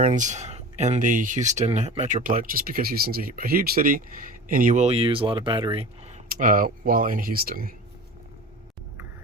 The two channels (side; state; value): both; normal; correlation 0.34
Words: in the Houston Metroplex, just because Houston's a huge city and you will use a lot of battery while in Houston.